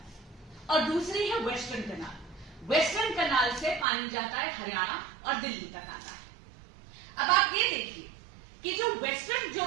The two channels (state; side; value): drops out; left; at 3.9 s